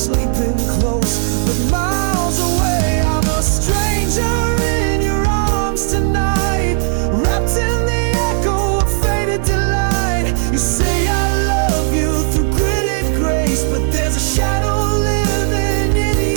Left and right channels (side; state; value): left; silent; digital silence